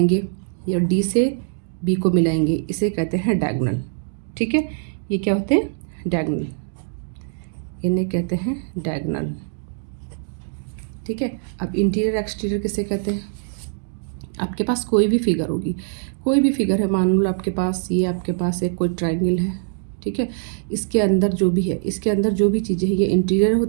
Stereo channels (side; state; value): left; silent; digital silence